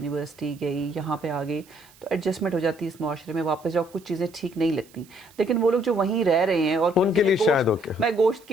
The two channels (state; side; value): noise; right; hiss, 27 dB below the sound